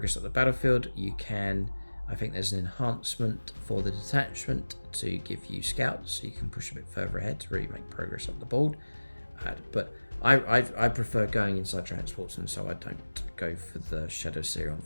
at the battlefield, you can, I think there's an enhancement for the detachment to give you scouts, so you can push a bit further ahead to really make progress up the board. But I prefer going inside transports, and so I don't go for the Shadowseer on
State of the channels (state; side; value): inverted; both; correlation -1.00